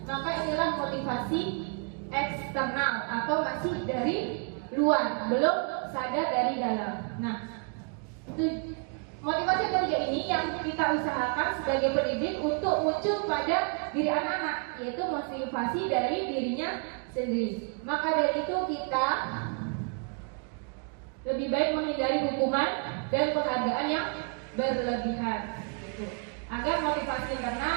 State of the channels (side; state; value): left; quieter; 39.4 dB